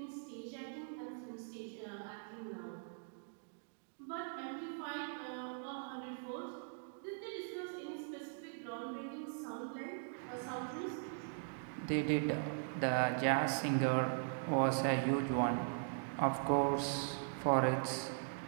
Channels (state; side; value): silent; left; digital silence